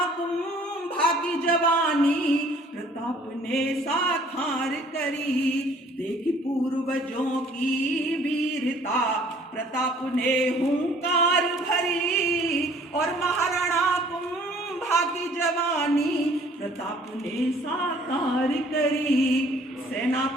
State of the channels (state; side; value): normal; both; correlation 0.56